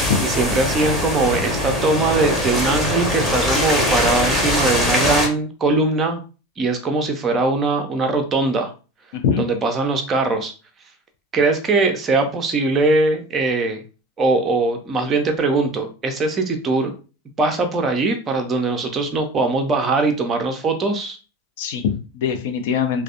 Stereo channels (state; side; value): normal; both; correlation 0.36